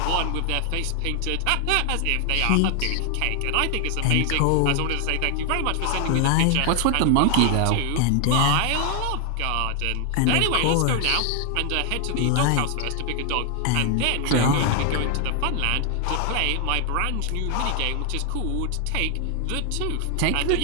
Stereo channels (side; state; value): both; different; correlation 0.00